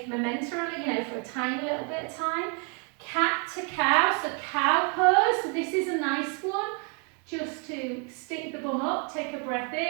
momentarily, you know, for a tiny little bit of time. Cat to cow, so cow pose, so this is a nice one. Just to stick the bum up, take a breath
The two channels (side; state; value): left; quieter; 37.7 dB